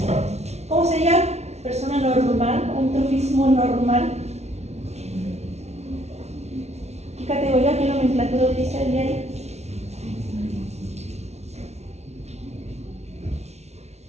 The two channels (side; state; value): left; late; 0.31 ms